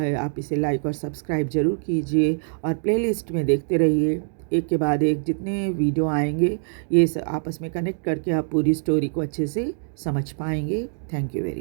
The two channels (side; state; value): left; silent; digital silence